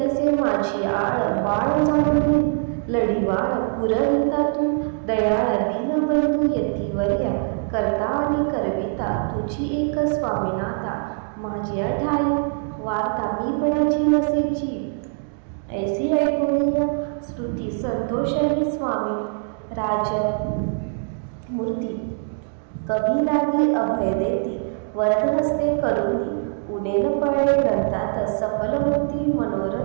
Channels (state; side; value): silent; left; digital silence